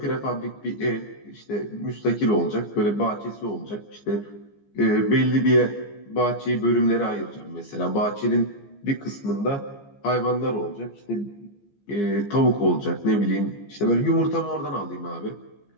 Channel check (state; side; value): late; right; 15 ms